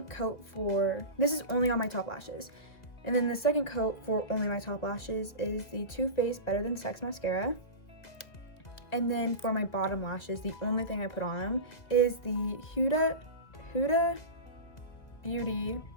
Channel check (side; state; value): right; late; 2.0 ms